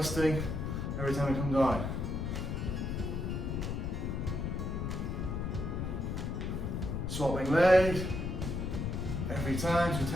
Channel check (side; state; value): left; noise; rumble, 2 dB below the sound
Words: every time you come down. Swapping legs every time,